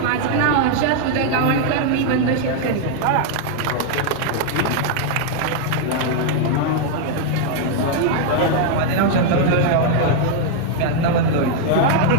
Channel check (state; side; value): different; both; correlation 0.00